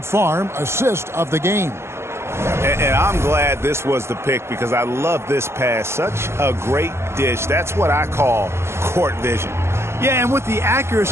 Farm assist of the game. And I'm glad this was the pick because I love this pass. Such a great dish. That's what I call court vision. Yeah, and with the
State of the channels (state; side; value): late; left; 0.13 ms